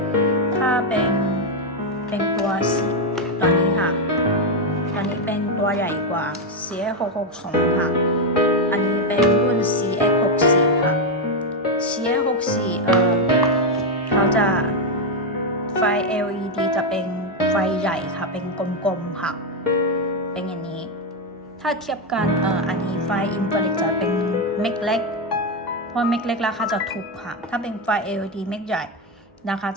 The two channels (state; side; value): normal; both; correlation 0.05